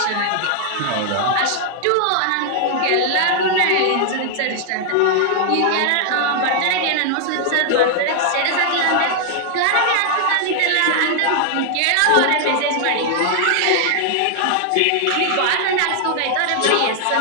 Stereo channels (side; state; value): both; different; correlation 0.00